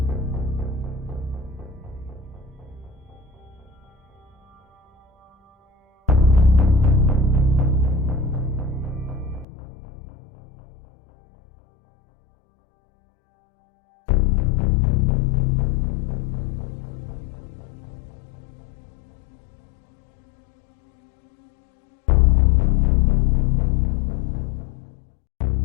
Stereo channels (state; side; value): drops out; right; at 9.5 s